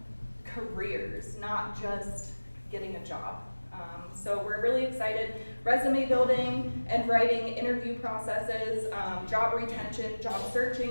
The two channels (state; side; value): inverted; both; correlation -1.00